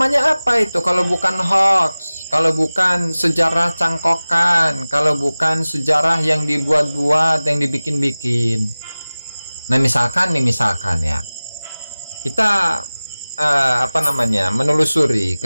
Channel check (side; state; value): both; inverted; correlation -0.98